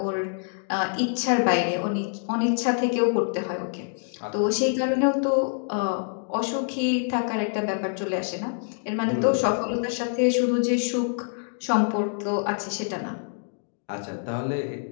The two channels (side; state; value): right; silent; 61 dB below the other